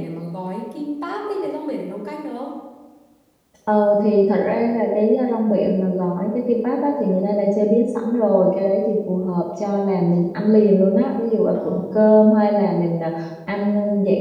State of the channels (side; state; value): both; identical; correlation 1.00